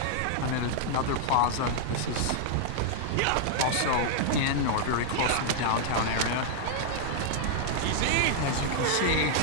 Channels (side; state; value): both; different; correlation -0.01